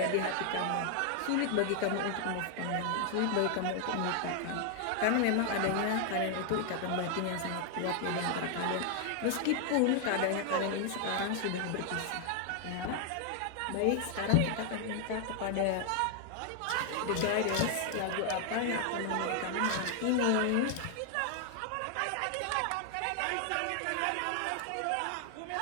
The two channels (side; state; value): both; different; correlation 0.00